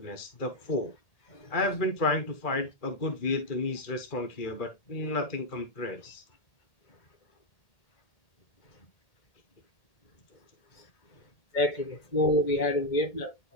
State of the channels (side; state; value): right; late; 1.8 ms